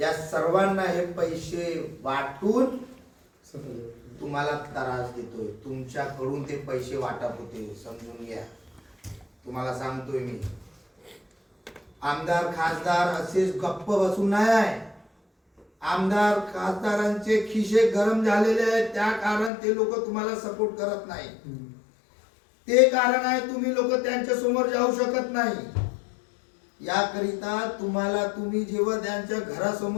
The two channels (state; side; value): drops out; right; at 19.5 s